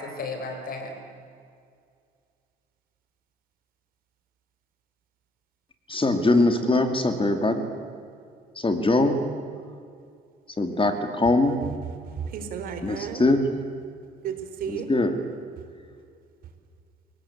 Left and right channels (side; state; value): both; normal; correlation 0.69